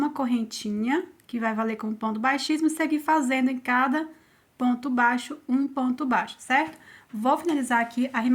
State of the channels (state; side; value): identical; both; correlation 1.00